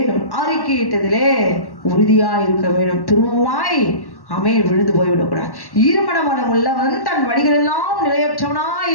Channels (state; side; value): late; right; 1.1 ms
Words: அறிக்கையிட்டதிலே உறுதியாய் இருக்க வேண்டும். திரும்பமாய் ஆமென் விழுந்து போய்விடக்கூடாது. ஈரமனம் உள்ளவன் தன் வழிகளெல்லாம் நிலையற்றவனாய்